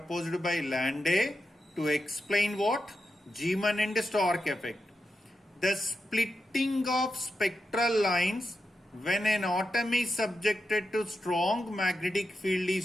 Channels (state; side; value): normal; both; correlation 0.88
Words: by Landé to explain what? Zeeman and Stark effect. The splitting of spectral lines when an atom is subjected to strong magnetic field